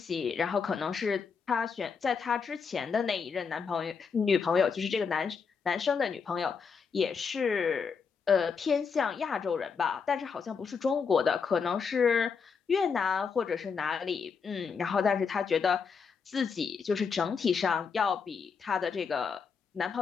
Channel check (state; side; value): quieter; right; 5.8 dB